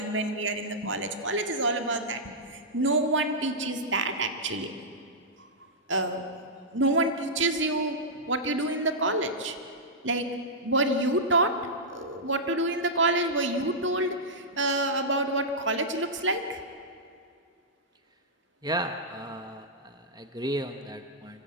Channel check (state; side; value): normal; both; correlation -0.11